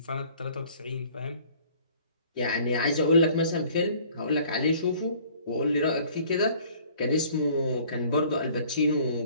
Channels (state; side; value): inverted; both; correlation -0.54